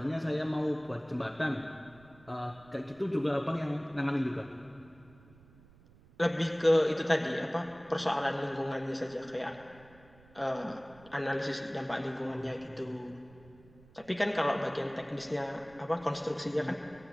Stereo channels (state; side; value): noise; right; rumble, 25 dB below the sound